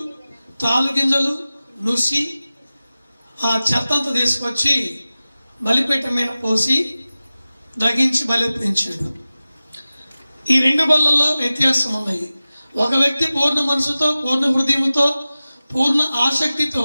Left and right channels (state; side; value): inverted; both; correlation -0.97